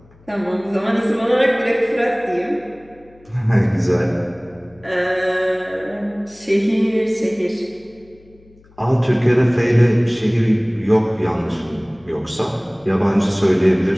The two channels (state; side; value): noise; left; hum, 28 dB below the sound